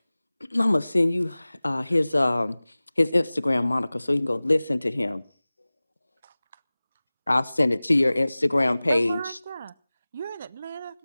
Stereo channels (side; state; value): both; inverted; correlation -0.99